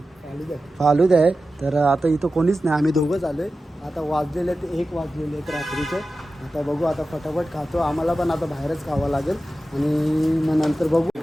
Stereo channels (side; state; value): both; normal; correlation 0.93